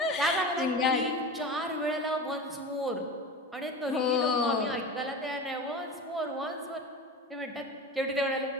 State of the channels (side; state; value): both; normal; correlation 0.30